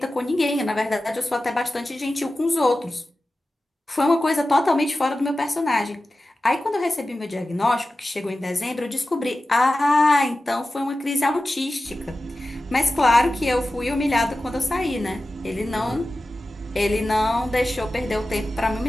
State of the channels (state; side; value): normal; both; correlation 0.94